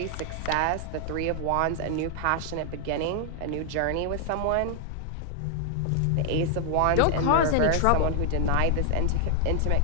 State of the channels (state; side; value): different; both; correlation 0.00